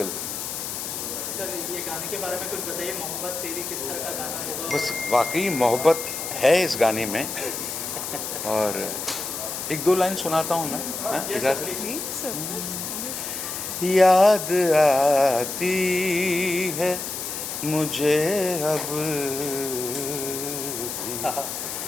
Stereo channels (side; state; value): left; noise; hiss, 5 dB below the sound